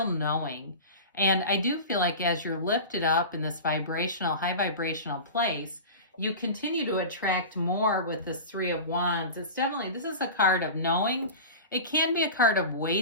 knowing. And I do feel like as you're lifted up in this vibrational, high vibrational place, you continue to attract more with this Three of Wands. It's definitely, this is a card of knowing. It can be a card of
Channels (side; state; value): both; inverted; correlation -0.31